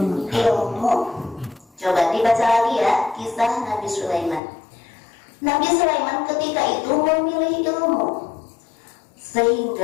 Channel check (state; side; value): drops out; right; at 4.4 s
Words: Ilmu. Coba dibaca lagi ya kisah Nabi Sulaiman. Nabi Sulaiman ketika itu memilih ilmu,